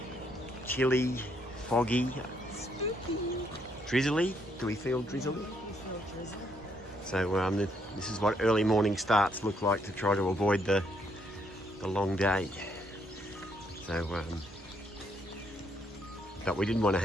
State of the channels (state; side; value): normal; both; correlation 0.72